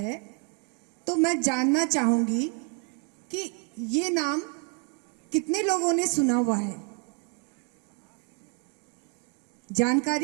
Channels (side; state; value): left; quieter; 37.9 dB